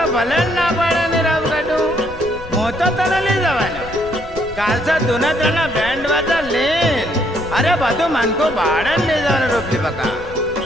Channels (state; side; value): noise; left; rumble, 15 dB below the sound